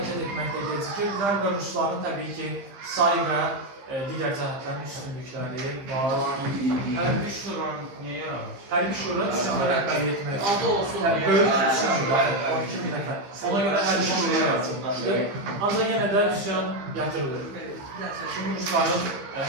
etməkdə gecikirdilər və Rusların təbii ki, say və digər cəhətlərin üstünlükləri var. Hərbi şura niyə yaranır? Hərbi şura üsyanda rəhbərlik etmək. Adı olsun. Böyük üsyanlar, 12 min nəfər. Ona görə hərbi şura yaratılmışdır. Ancaq yenə də üsyan yatırılır. Çünki Rusların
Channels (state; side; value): late; left; 15 ms